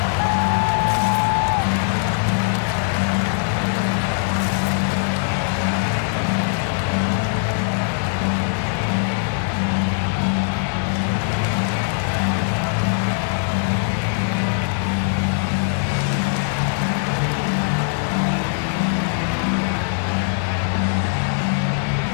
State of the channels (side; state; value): right; silent; 65 dB below the other